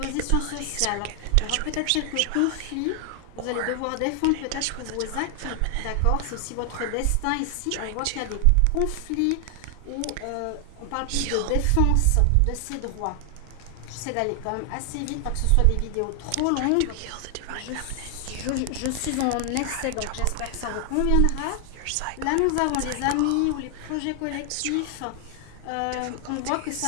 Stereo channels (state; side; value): different; both; correlation 0.00